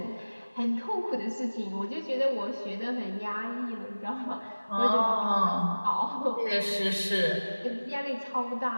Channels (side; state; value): both; inverted; correlation -1.00